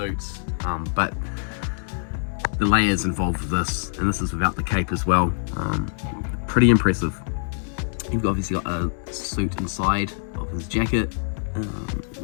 But the layers involved with this, and this is without the cape as well, pretty impressive. You've obviously got a suit inside of his jacket.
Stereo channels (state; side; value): silent; right; 62 dB below the other